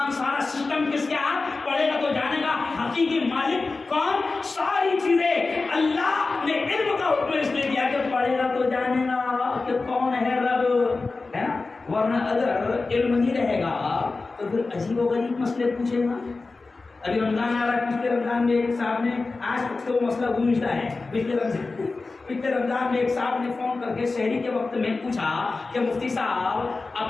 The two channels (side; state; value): right; quieter; 3.8 dB